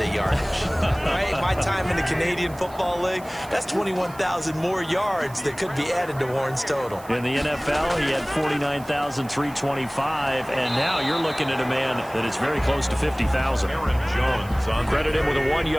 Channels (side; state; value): right; noise; hiss, 22 dB below the sound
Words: yardage? Right? My time in the Canadian Football League, that's 21,000 more yards that could be added to Warren's total. In the NFL, he had 49,325, and now you're looking at a man that is very close to 50,000. Aaron Jones on Credit him with a